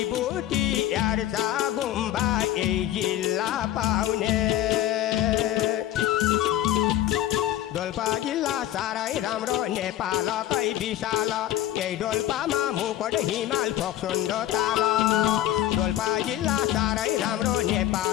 यार्चा गुम्बा यही जिल्ला पाउने डोल्पा जिल्ला साह्रै राम्रो नेपालकै विशाल यही डोल्पामा मुकुट हिमाल फोक्सोन्डो ताल डोल्पा जिल्ला साह्रै राम्रो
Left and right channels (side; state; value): right; quieter; 13.1 dB